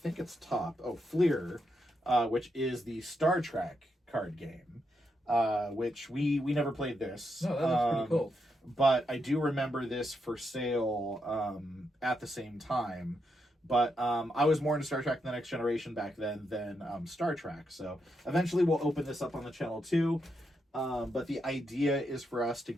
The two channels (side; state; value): both; normal; correlation 0.82